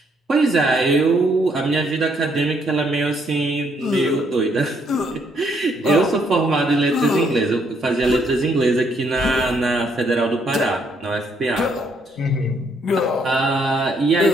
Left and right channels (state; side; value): normal; both; correlation 0.71